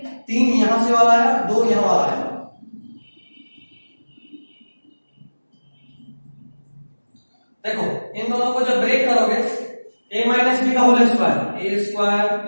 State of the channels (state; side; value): inverted; both; correlation -1.00